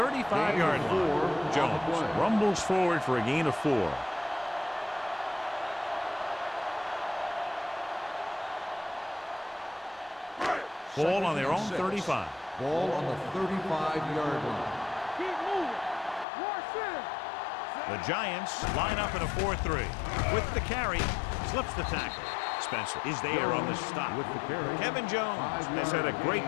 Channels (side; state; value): right; drops out; at 16.2 s